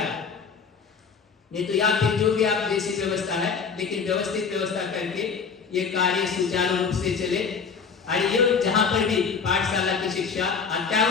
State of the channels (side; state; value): right; quieter; 5.8 dB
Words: नहीं तो या फिर जो भी आप जैसी व्यवस्था है, लेकिन व्यवस्थित व्यवस्था करके ये कार्य सुचारू रूप से चले। और ये जहाँ पर भी पाठशाला की शिक्षा